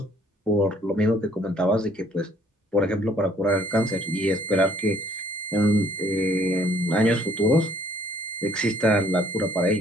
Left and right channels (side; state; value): both; normal; correlation 0.62